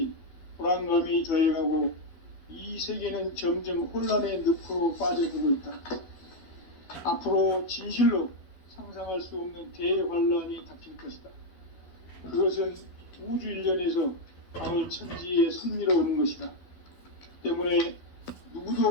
불안감이 더해가고 이 세계는 점점 혼란의 늪으로 빠져들고 있다. 앞으로 진실로 상상할 수 없는 대환란이 닥칠 것이다. 그것은 우주 일련에서 가을 천지에 섭리로 오는 것이다. 때문에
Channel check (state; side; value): late; right; 12 ms